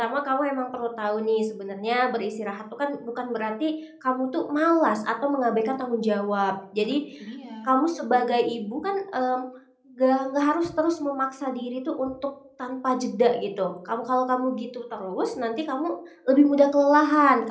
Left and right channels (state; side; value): identical; both; correlation 1.00